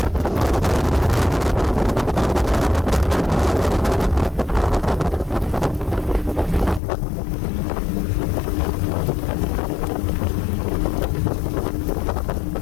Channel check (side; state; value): right; drops out; at 6.8 s